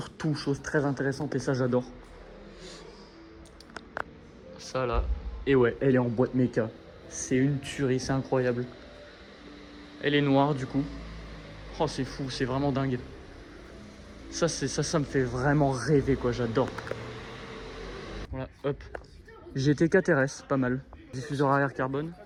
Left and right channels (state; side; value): identical; both; correlation 1.00